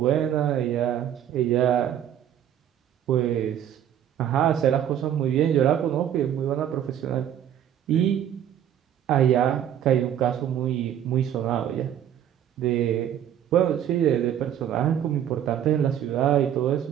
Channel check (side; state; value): left; quieter; 10.2 dB